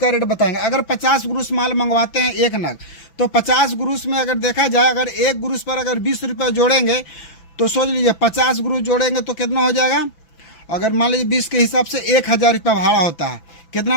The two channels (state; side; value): late; right; 6.0 ms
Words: रेट बताएंगे। अगर 50 ग्रोस माल मंगवाते हैं एक नग, तो 50 ग्रोस में अगर देखा जाए, अगर एक ग्रोस पर अगर 20 रुपये जोड़ेंगे तो सोच लीजिए 50 ग्रोस जोड़ेंगे तो कितना हो जाएगा। अगर मान लीजिए 20 के हिसाब से 1000 रुपया भाड़ा होता है।